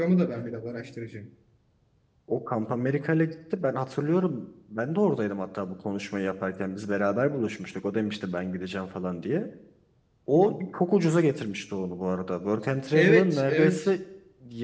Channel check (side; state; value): both; identical; correlation 1.00